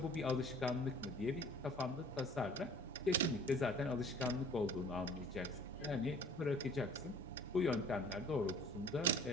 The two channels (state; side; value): normal; both; correlation 0.50